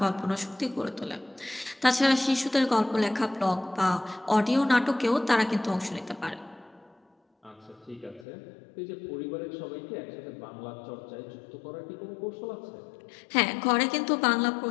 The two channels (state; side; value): drops out; right; at 8.2 s